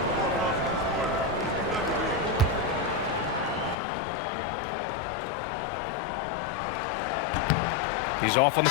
He's off on the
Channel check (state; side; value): drops out; right; at 3.8 s